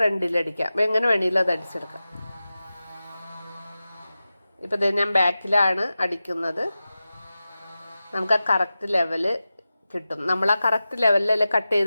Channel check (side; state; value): both; inverted; correlation -0.95